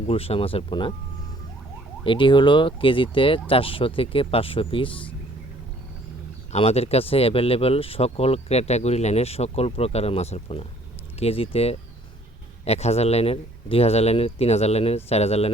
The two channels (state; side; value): normal; both; correlation 0.59